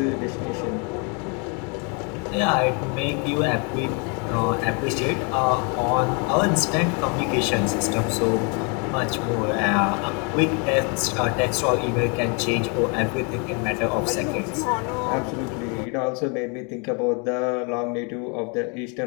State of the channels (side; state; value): right; quieter; 34.7 dB